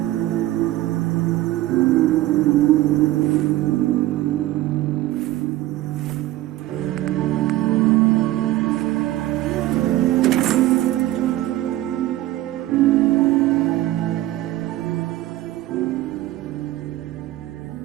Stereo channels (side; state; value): left; quieter; 15.6 dB